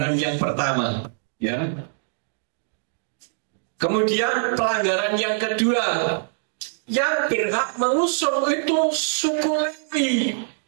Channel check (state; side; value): silent; left; digital silence